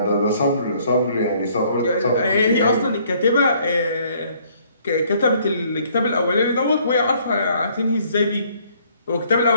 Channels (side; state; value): both; inverted; correlation -0.63